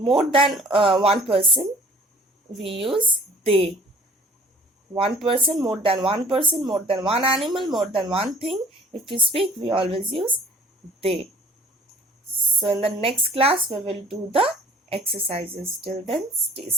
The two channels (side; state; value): both; normal; correlation 0.51